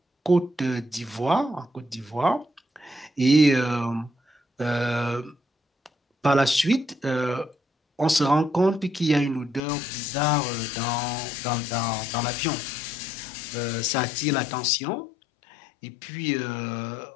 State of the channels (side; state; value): right; drops out; at 9.6 s